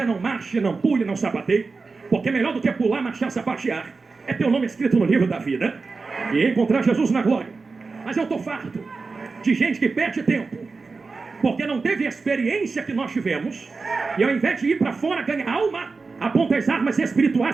não marche, não pule, não sapateie. Porque melhor do que pular, marchar, sapatear, é ter o nome escrito no livro da vida e encontrar Jesus na glória. Mas eu estou farto de gente que perde tempo, porque não teve a experiência que nós tivemos, e ao invés de ir para fora ganhar alma, aponta as armas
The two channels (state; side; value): quieter; left; 4.2 dB